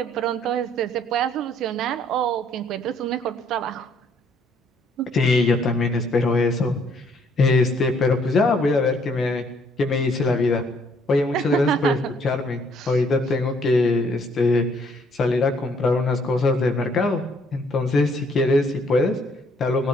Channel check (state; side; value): normal; both; correlation 0.65